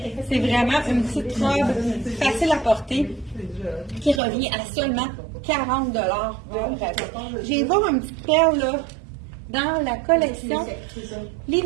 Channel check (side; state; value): left; drops out; at 4.2 s